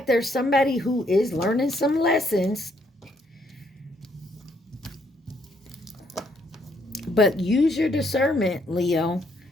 there's somebody who is learning some lessons. But use your discernment, Leo.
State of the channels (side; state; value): both; normal; correlation 0.70